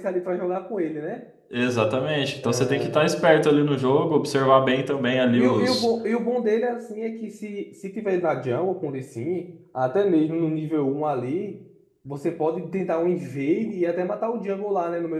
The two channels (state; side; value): identical; both; correlation 1.00